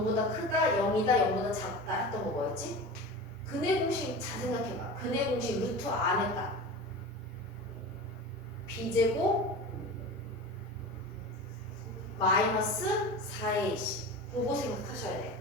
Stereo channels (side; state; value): both; normal; correlation 0.31